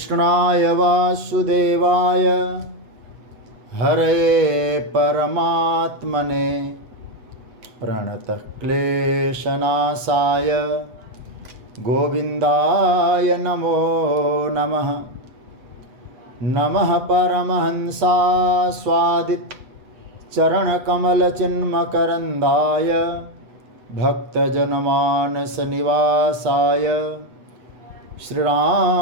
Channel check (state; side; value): late; left; 8.1 ms